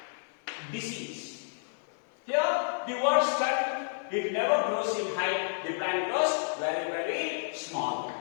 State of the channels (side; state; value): right; silent; digital silence